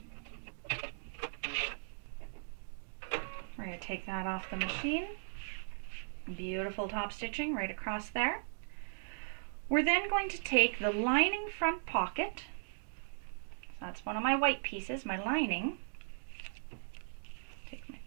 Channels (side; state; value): left; silent; digital silence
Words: We're going to take that off the machine. Beautiful top stitching right across there. We're then going to take the lining front pocket. So that's one of my white pieces, my lining. Take my